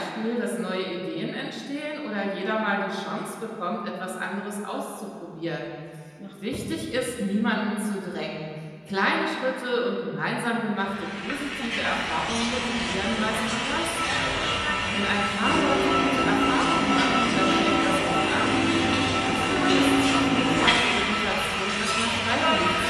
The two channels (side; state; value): both; identical; correlation 1.00